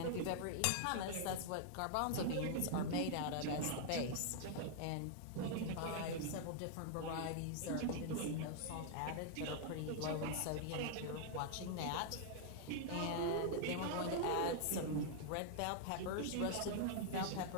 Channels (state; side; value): different; both; correlation -0.01